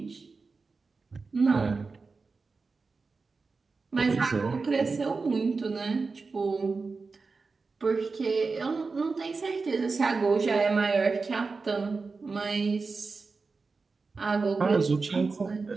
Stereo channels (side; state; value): left; quieter; 4.3 dB